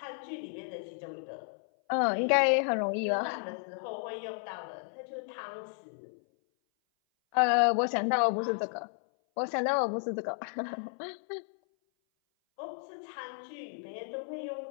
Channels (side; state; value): right; silent; 56 dB below the other